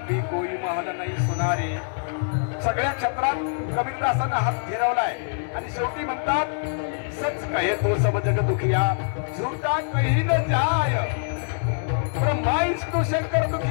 कोई महल नाही सुनारे सगळ्या क्षेत्रात कबीरदासांना हात फिरवलाय आणि शेवटी म्हणतात सच कहे तो सब जग दुखिया झूठा कहीं न जाय ब्रह्मा विष्णू शंकर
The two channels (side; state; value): right; silent; digital silence